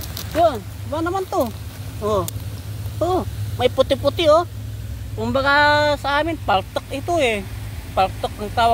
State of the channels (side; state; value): both; identical; correlation 1.00